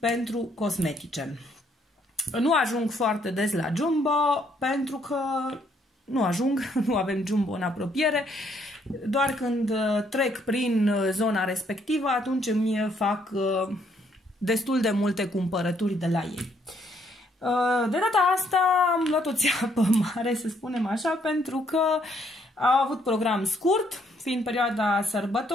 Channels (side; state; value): both; normal; correlation 0.69